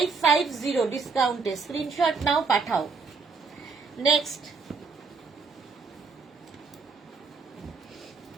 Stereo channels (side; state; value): left; quieter; 4.8 dB